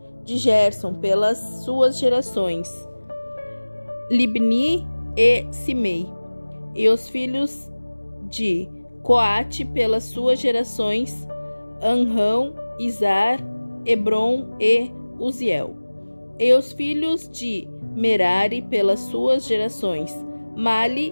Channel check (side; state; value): both; inverted; correlation -1.00